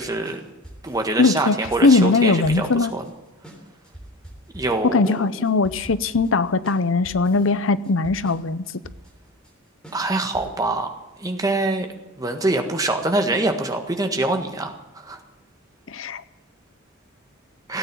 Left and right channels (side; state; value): both; normal; correlation 0.33